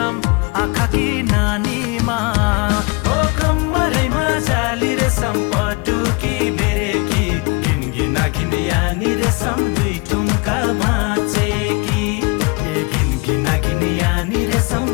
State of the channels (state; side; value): quieter; right; 28.2 dB